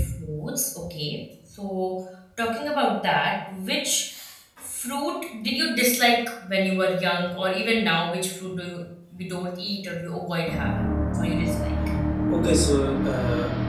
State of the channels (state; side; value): identical; both; correlation 1.00